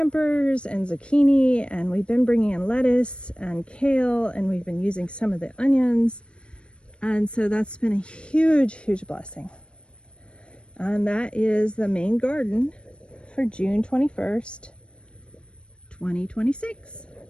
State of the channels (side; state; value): right; late; 0.057 ms